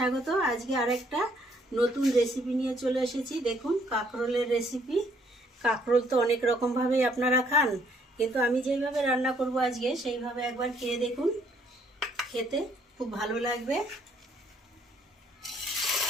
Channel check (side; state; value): both; normal; correlation 0.66